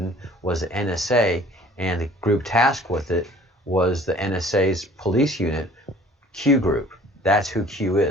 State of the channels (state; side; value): normal; both; correlation 0.51